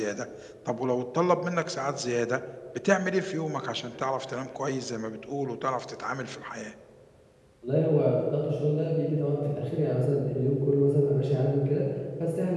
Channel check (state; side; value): identical; both; correlation 1.00